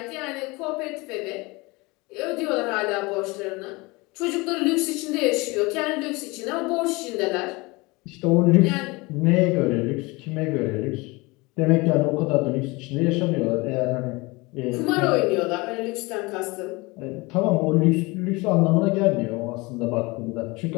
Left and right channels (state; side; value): quieter; right; 24.6 dB